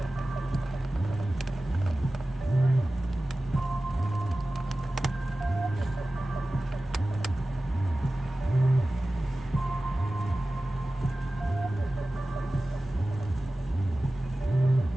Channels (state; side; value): normal; both; correlation 0.96